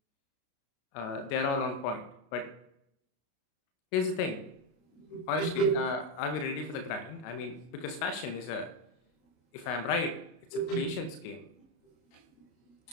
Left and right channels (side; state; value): right; late; 33 ms